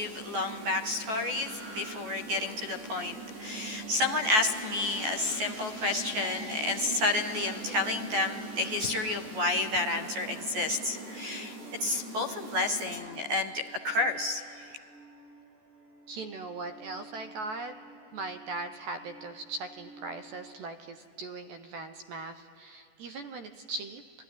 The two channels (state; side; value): late; left; 14 ms